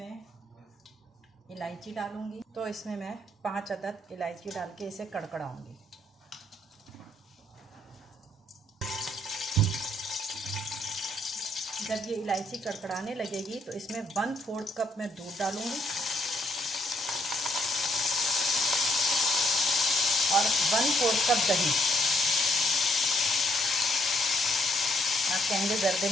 इलायची डालूँगी। तो इसमें मैं 5 अदद इलायची डाल के इसे कड़कड़ाऊँगी। जब ये इलायची कड़कड़ाने लगेगी तो इसमें 1/4 कप मैं दूध डालूंगी और 1/4 कप दही। आप कहेंगे ज़र्दे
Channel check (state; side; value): normal; both; correlation 0.70